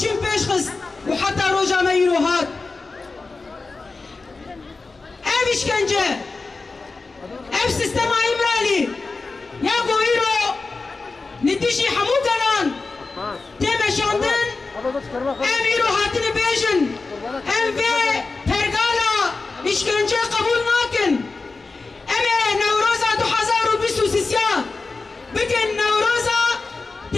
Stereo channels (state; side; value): quieter; right; 3.9 dB